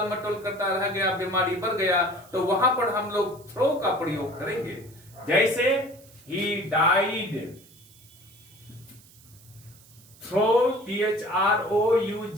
मटोल करता रह गया, बीमारी बढ़ गया, तो वहां पर हम लोग थ्रो का प्रयोग करेंगे। जैसे ही died through,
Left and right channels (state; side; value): noise; right; hiss, 25 dB below the sound